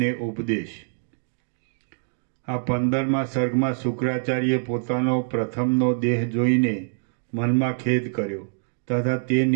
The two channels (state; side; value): silent; left; digital silence